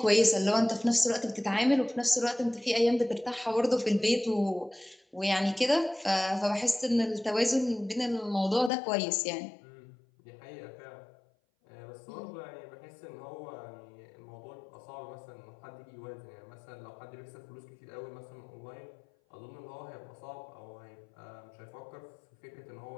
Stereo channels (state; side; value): drops out; right; at 8.7 s